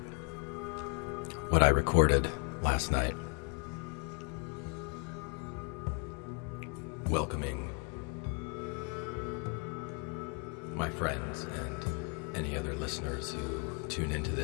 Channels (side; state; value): right; quieter; 37.8 dB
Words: what I recorded last night, welcoming my friends and any other listeners who tune into